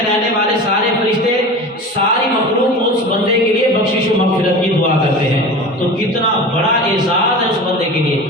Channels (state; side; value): normal; both; correlation 0.33